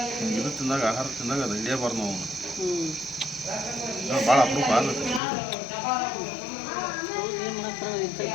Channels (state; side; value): drops out; right; at 5.2 s